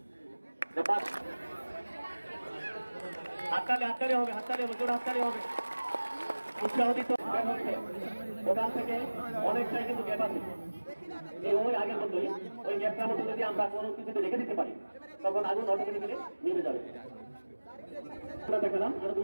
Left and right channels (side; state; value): both; inverted; correlation -1.00